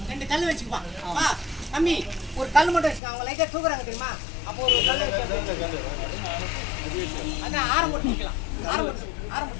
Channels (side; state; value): right; drops out; at 3.0 s